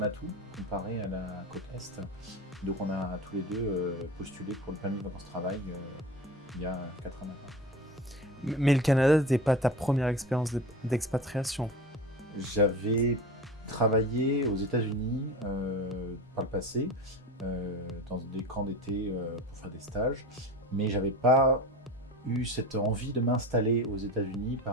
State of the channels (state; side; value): normal; both; correlation 0.32